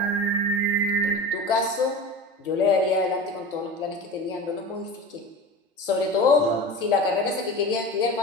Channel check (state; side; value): normal; both; correlation 0.31